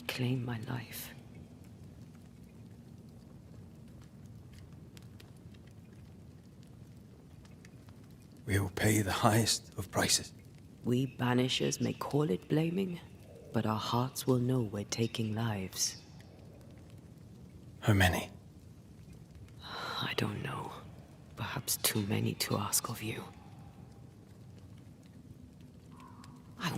my life. We will pay the highest of prices. We Banishers may call it blaming, but our hearts will know we're taking lives. How many? I don't know. Perhaps too many to ask of you. I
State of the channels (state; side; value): identical; both; correlation 1.00